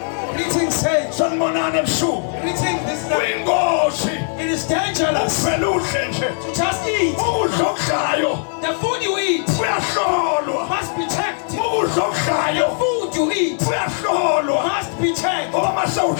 Greeting saints. Sanibonani ebusuku. Greeting. This is Kuyingozi. it is dangerous Ufela udle nje. to just eat. Ukudla okudlayo The food you eat kuyahlolwa. must be checked. Ukudla okudlayo Food you eat kuyahlolwa. must be checked. Ngoba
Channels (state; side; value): silent; right; 58 dB below the other